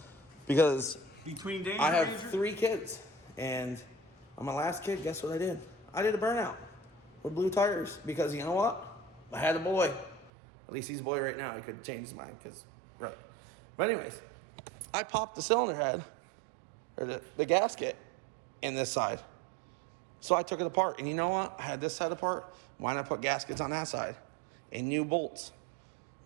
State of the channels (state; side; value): drops out; left; at 10.3 s